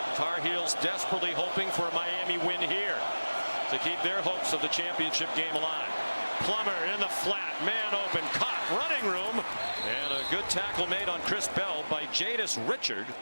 Tar Heels desperately hoping for a Miami win here to keep their hopes of the championship game alive. Plummer in the flat, man open, caught, running room, and a good tackle made on Chris Bell by Jadis Richard.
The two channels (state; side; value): inverted; both; correlation -1.00